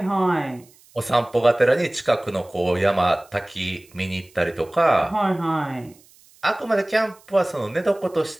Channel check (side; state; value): right; noise; hiss, 28 dB below the sound